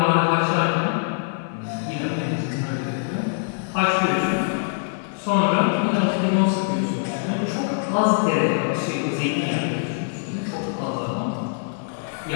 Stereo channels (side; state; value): right; silent; digital silence